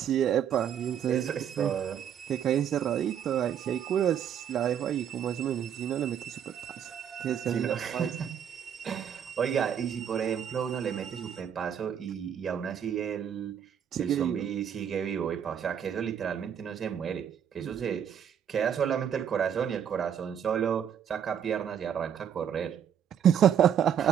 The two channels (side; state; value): left; quieter; 8.8 dB